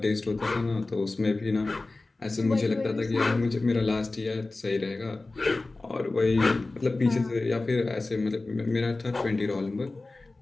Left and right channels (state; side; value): quieter; right; 3.2 dB